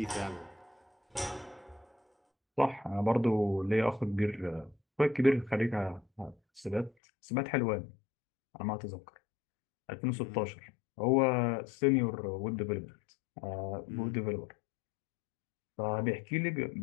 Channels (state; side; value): drops out; right; at 6.9 s